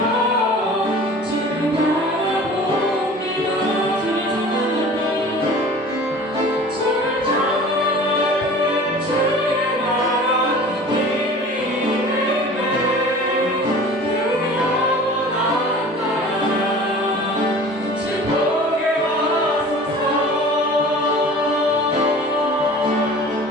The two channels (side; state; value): both; normal; correlation 0.42